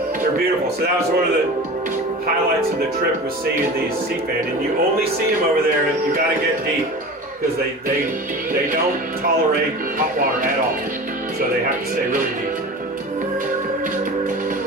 They're beautiful. So that was one of the highlights of the trip, was seeing these sea fan. And you only see them over there, and you got to get deep, because they don't tolerate hot water at all. So they have to stay really deep.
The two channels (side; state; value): both; normal; correlation 0.34